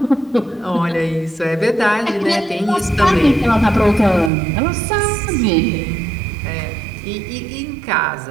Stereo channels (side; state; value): left; drops out; at 4.3 s